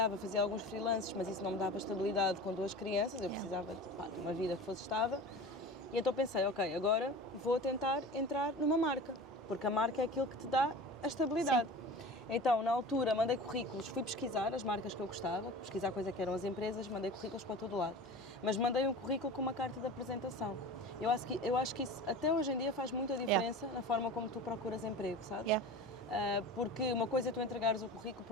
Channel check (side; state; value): both; normal; correlation 0.35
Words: fazia alguns freelances, mas isso não me dava estabilidade com 2 crianças, eu precisava de uma vida que fosse estável. E então pensei, ok, agora vou tentar entrar numa marca, porque a marca é aquilo que te dá a estabilidade. Sim. Então, na altura, mandei currículos, fui pesquisar as marcas que eu gostava, pesquisar coisa que eram as empresas, mandei currículos para todo lado. Mas mandei um currículo com uma carta de apresentação. Eu acho que isso, até hoje em dia, faz muita diferença na forma como tu procuras emprego, sabes? Porque uma coisa é tu entregares o currículo,